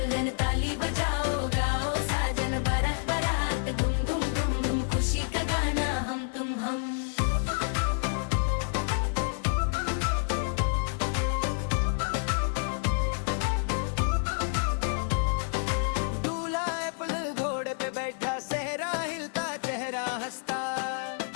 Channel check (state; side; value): silent; right; 59 dB below the other